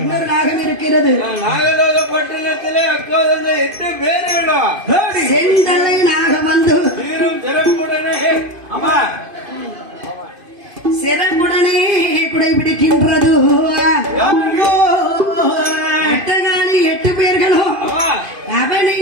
நாகம் இருக்கிறது. நாகலோகப்பட்டினத்திலே அக்கோதந்த 8 பேர்களா செந்தலை நாகம் வந்து சிறப்புடனே குடை பிடிக்கின்றது. அட்டகாலி 8 பேர்களும்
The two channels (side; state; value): left; late; 2.5 ms